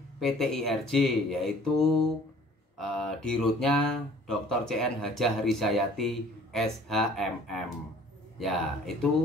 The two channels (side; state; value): both; normal; correlation 0.53